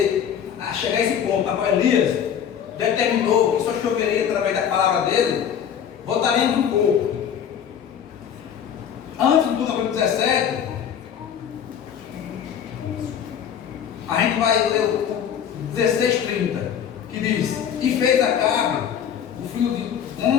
a chegar a esse ponto, na qual Elias determinou que só choveria através da palavra dele, voltaremos um pouco. Antes do capítulo 17, a gente vai ler o 16:30, que diz: E fez Acabe, o filho de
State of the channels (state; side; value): quieter; right; 8.6 dB